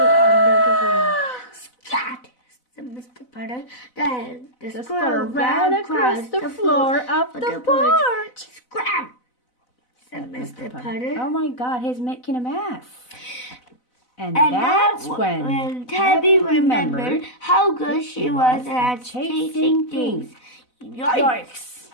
rail. Scat! Said Mr. Putter. Then the squirrel ran across the floor of the porch. Scram! Said Mr. Putter. Oh my God, he's making a mess. And And that's when Tabby remembered how good she was at chasing things. Yikes!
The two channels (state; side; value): late; right; 4.0 ms